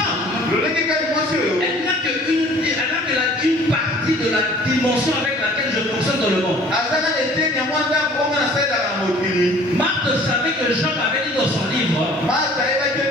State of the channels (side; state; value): both; normal; correlation 0.51